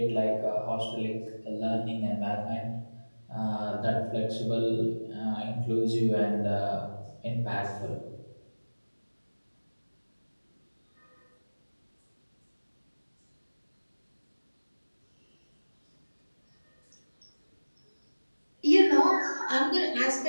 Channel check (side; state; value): both; inverted; correlation -1.00